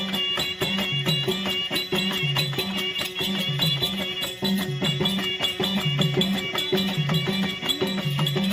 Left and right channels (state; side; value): identical; both; correlation 1.00